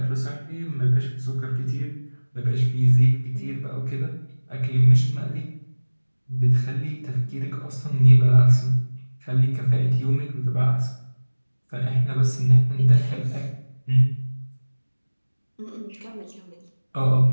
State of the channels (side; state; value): both; inverted; correlation -1.00